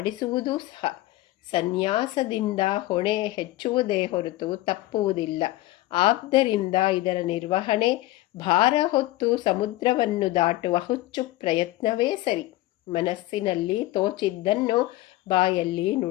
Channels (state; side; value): quieter; right; 17.1 dB